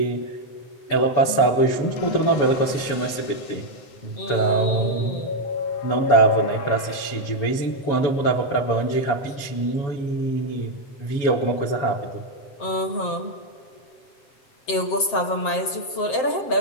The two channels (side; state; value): right; late; 7.6 ms